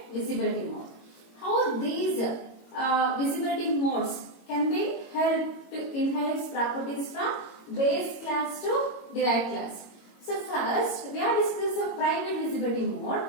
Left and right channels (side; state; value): right; late; 22 ms